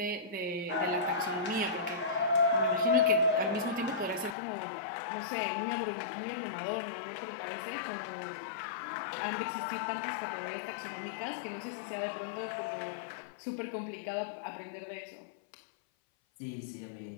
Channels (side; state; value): right; drops out; at 4.4 s